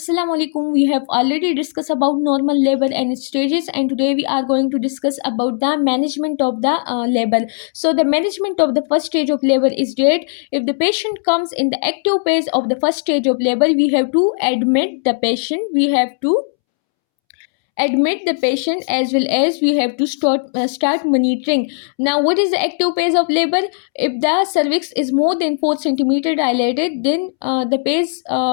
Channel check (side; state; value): right; silent; 68 dB below the other